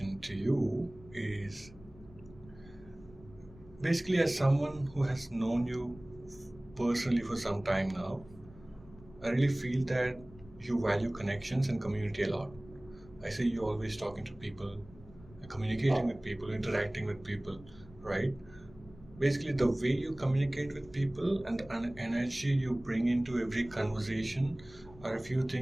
to you is basically, as someone who has known you personally for some time now, I really feel that you value connections and community a lot. I see you always talking to people, communicating with people, interacting with people, right? Basically, the way you communicate with people and the energy you bring into every conversation are a few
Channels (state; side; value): noise; left; rumble, 21 dB below the sound